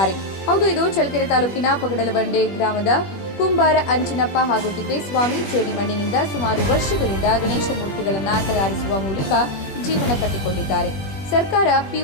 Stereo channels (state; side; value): late; right; 21 ms